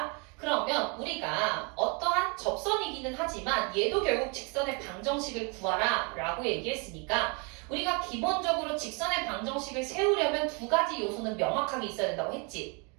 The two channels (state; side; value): quieter; left; 32.7 dB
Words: 그러면 우리가 어떠한 접선이기는 하지만 얘도 결국 직선의 방정식을 구하라 라고 얘기했으니까 우리가 기본적으로 직선의 방정식을 세우려면 두 가지 요소는 명확하게 있어야 된다고 했지.